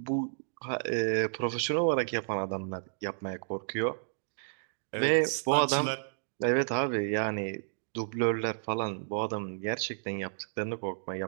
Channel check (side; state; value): left; silent; digital silence